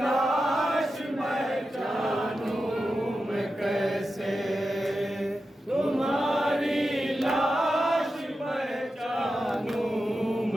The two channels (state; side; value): normal; both; correlation 0.91